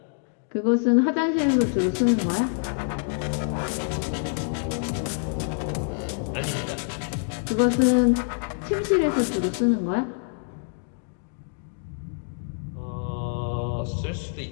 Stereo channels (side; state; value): right; silent; digital silence